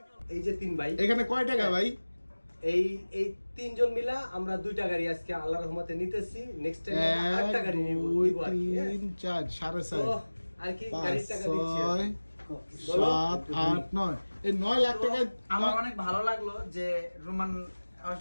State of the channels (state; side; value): inverted; both; correlation -1.00